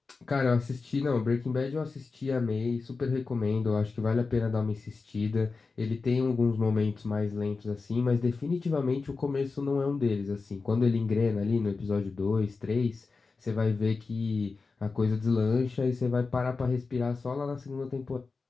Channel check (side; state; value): right; quieter; 4.3 dB